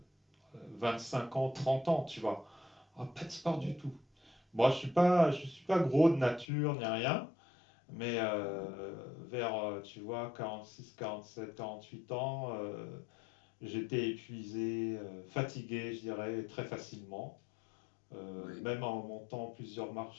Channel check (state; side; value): drops out; right; at 6.5 s